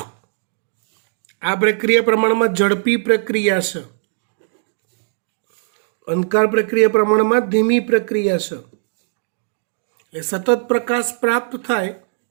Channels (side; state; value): left; silent; digital silence